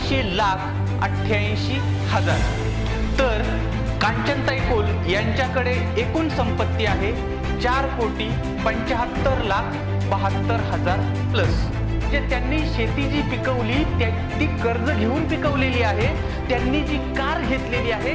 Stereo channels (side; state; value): both; identical; correlation 1.00